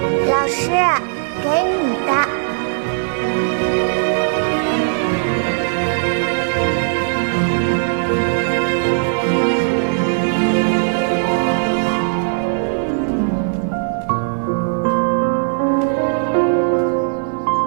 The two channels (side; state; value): left; silent; digital silence